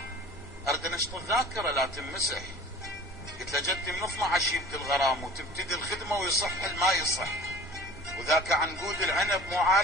ارد انشط الذاكرة لا تنمسح. قلت له جدي من 12 يبدي الغرام وتبتدي الخدمة ويصح ما يصح، وذاك عنقود العنب مو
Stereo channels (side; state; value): both; normal; correlation 0.44